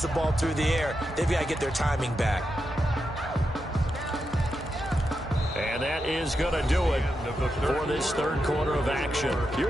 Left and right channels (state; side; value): normal; both; correlation 0.86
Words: the ball through the air. They've got to get their timing back. And that is going to do it for this 3rd quarter of action.